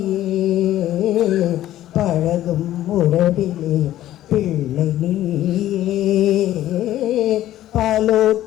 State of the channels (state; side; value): quieter; right; 13.5 dB